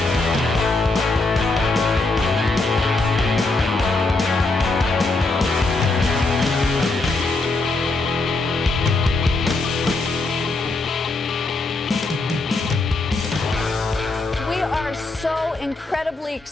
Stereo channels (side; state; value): right; quieter; 3.2 dB